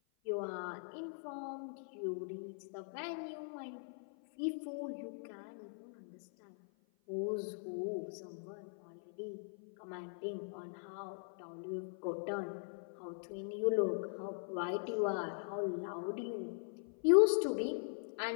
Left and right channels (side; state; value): right; silent; 51 dB below the other